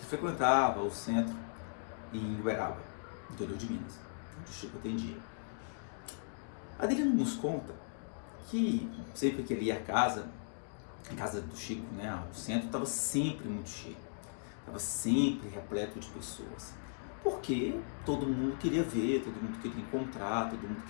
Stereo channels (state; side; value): silent; right; digital silence